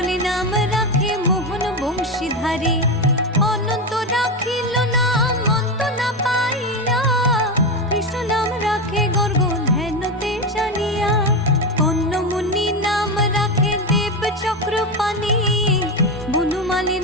নাম রাখে মোহন বংশীধারী, অনন্ত রাখিল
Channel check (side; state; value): both; normal; correlation 0.15